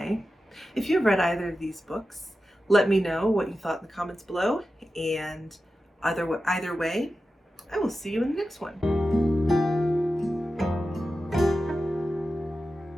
if you've read either of these books, let me know what you thought in the comments below. And either way, I will see you in the next one.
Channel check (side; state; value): both; normal; correlation 0.92